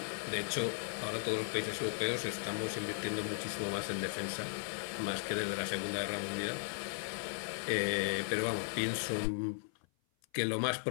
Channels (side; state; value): right; silent; 53 dB below the other